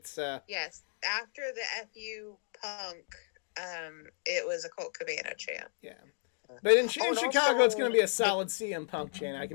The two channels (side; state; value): right; silent; digital silence